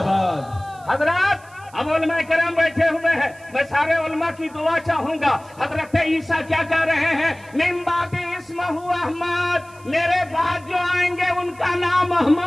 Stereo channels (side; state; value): right; noise; hiss, 27 dB below the sound